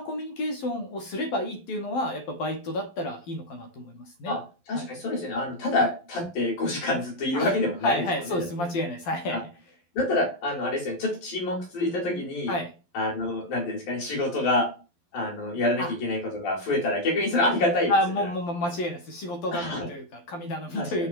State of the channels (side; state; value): right; late; 12 ms